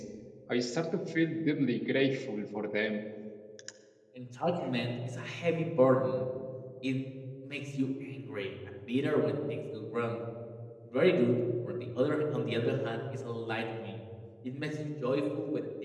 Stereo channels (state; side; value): identical; both; correlation 1.00